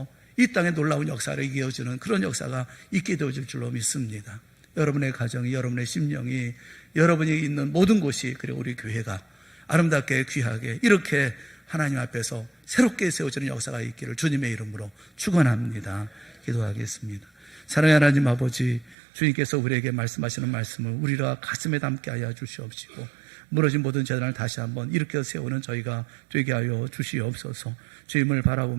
이 땅에 놀라운 역사를 이어주는 그런 역사가 있게 되어질 줄로 믿습니다. 여러분의 가정이, 여러분의 심령이, 여러분이 있는 모든 곳이, 그리고 우리 교회가 아름답게 귀하게 이렇게 하나님 앞에서 새롭게 세워지는 역사가 있기를 주님의 이름으로 축원합니다. 기도하겠습니다. 사랑의 하나님 아버지, 주님께서 우리에게 말씀하시는 말씀을 우리가 가슴에 담게 하여 주시옵시고 무너진 모든 재단을 다시 한번 일으켜 세우는 저희가 되게 하여 주시옵소서. 주님을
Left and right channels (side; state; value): left; drops out; at 18.9 s